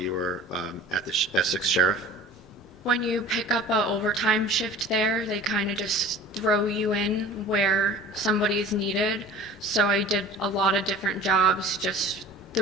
were at the Essex Sheriff? When you pick up a overtime shift there, they kind of just throw you in where somebody is needed. So I did a lot of different jobs just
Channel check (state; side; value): normal; both; correlation 0.43